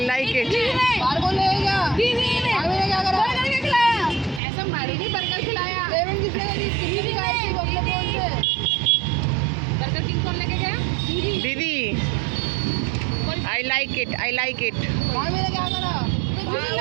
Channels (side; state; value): left; drops out; at 4.4 s